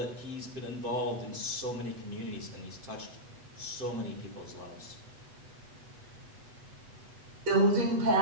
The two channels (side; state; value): left; late; 8.1 ms